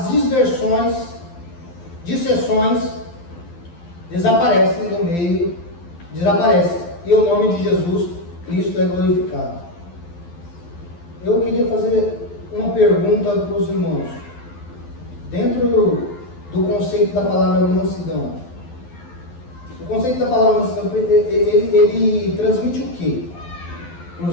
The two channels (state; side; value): late; right; 12 ms